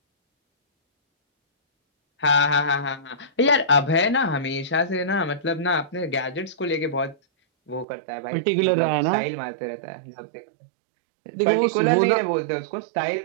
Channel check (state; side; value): drops out; left; at 7.9 s